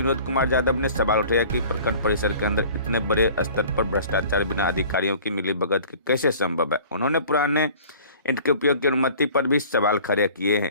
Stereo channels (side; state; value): both; inverted; correlation -0.46